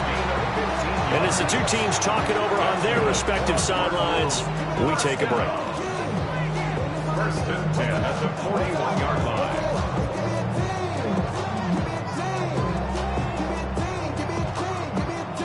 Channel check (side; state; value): both; identical; correlation 1.00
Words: And as the two teams talk it over on their respective sidelines, we take a break. First and 10 at the 41-yard line.